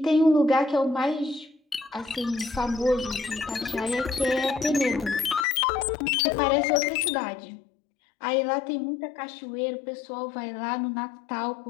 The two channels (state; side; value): drops out; right; at 5.5 s